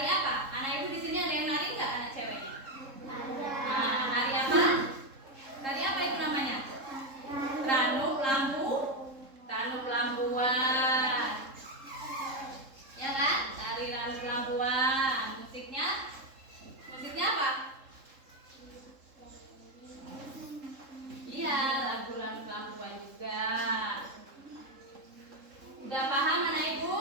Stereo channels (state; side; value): late; left; 3.7 ms